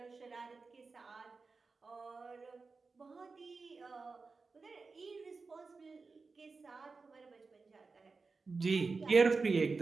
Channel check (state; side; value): quieter; left; 4.2 dB